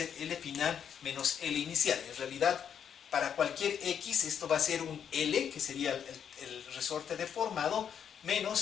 L final menos L inicial. En realidad, para cualquier X, esto va a ser un L, que sería el resorte deformado, menos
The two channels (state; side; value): quieter; right; 8.2 dB